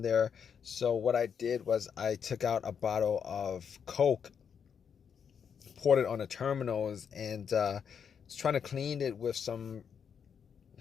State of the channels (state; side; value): quieter; right; 7.2 dB